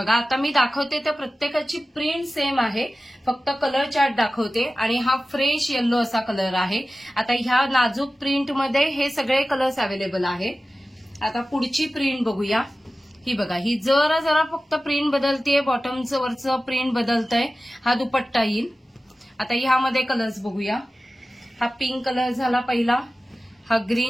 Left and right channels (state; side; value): normal; both; correlation 0.95